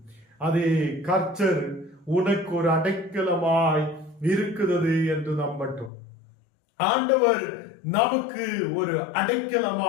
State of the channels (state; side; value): drops out; right; at 5.9 s